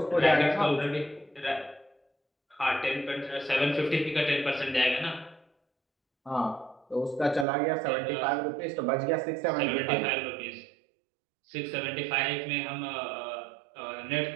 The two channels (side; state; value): left; drops out; at 7.5 s